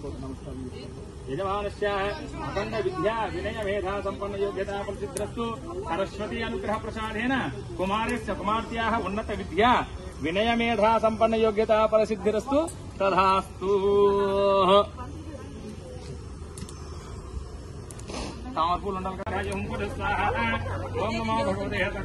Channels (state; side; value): identical; both; correlation 1.00